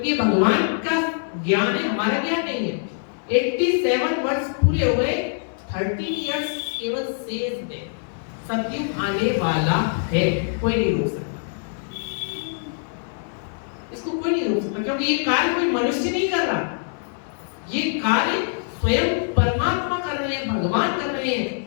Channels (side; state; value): right; silent; 63 dB below the other